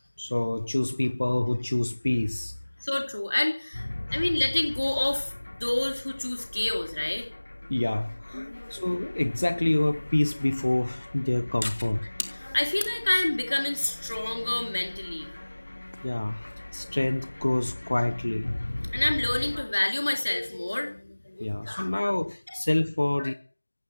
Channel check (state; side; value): inverted; both; correlation -1.00